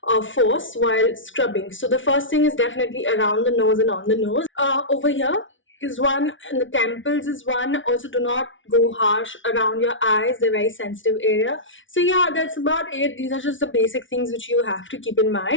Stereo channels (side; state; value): right; late; 0.56 ms